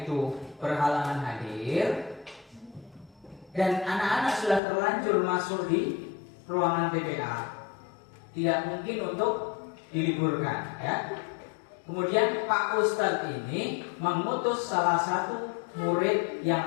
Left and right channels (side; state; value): right; drops out; at 4.6 s